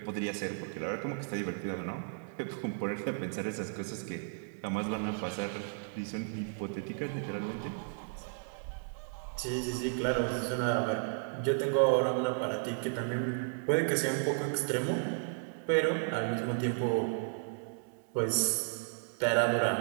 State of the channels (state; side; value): silent; left; 55 dB below the other